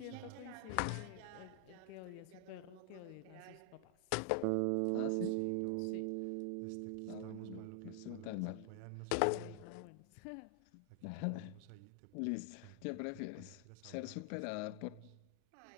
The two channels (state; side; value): different; both; correlation 0.00